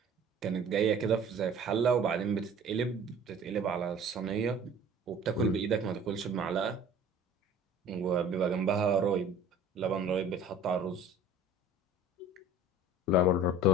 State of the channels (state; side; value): normal; both; correlation 0.46